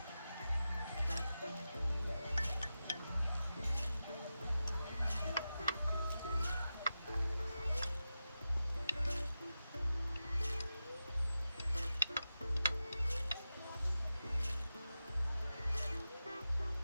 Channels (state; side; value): inverted; both; correlation -0.92